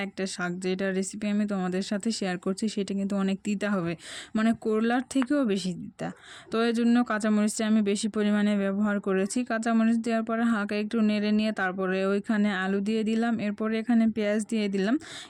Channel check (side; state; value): both; identical; correlation 1.00